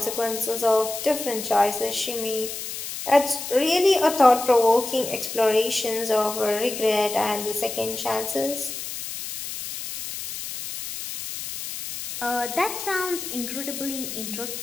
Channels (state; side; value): noise; left; hiss, 7 dB below the sound